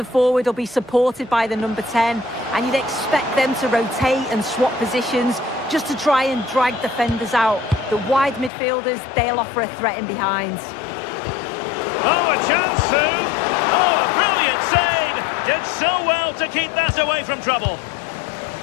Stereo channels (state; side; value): drops out; right; at 8.5 s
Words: will be supported by the number 10, and you'd expect them to rotate and swap positions just to try and drag defenders out. The wide midfielders, they'll offer a threat in behind. Oh, a chance, Sue! Oh, a brilliant save! Did so well to keep that away from trouble.